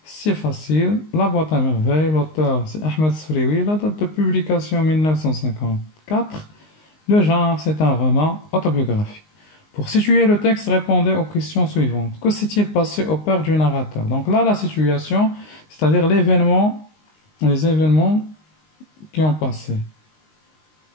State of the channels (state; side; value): late; right; 19 ms